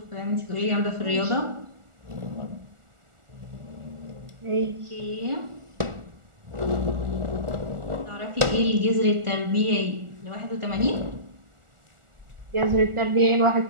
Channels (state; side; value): late; left; 1.4 ms